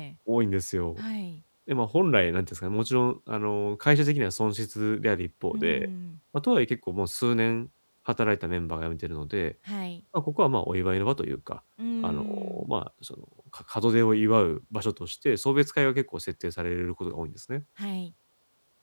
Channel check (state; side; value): inverted; both; correlation -1.00